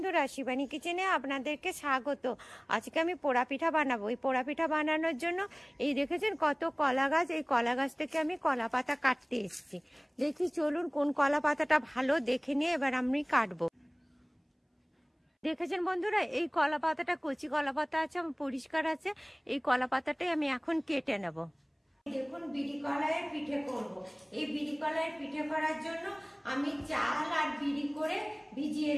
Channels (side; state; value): both; identical; correlation 1.00